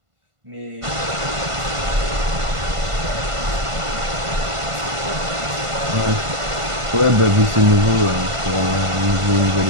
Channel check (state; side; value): late; left; 1.5 ms